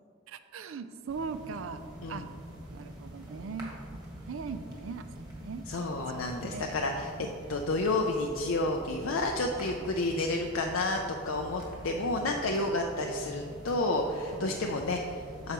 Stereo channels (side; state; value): both; normal; correlation 0.07